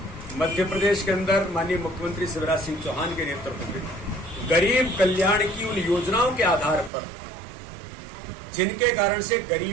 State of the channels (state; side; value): drops out; left; at 6.9 s